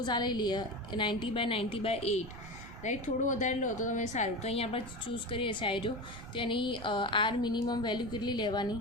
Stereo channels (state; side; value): noise; right; rumble, 13 dB below the sound